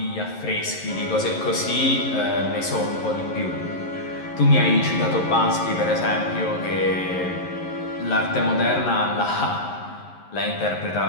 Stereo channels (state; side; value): late; right; 11 ms